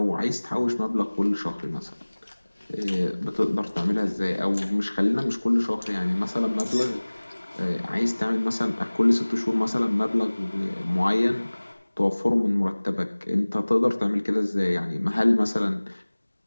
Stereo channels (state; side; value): inverted; both; correlation -1.00